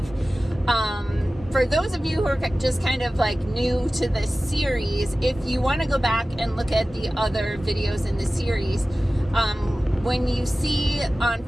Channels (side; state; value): both; normal; correlation 0.96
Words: For those of you who are just kind of like new to this series, if you want to go back and look at the other videos in the series, when you see on